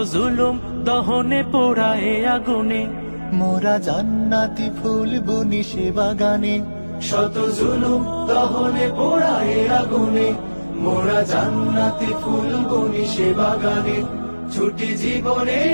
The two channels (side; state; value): both; inverted; correlation -1.00